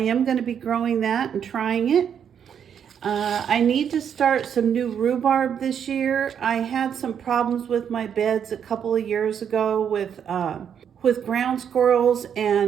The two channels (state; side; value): quieter; left; 8.2 dB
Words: going to be growing that and trying it. I need to start some new rhubarb this year. I had some problems with my beds a couple of years ago with ground squirrels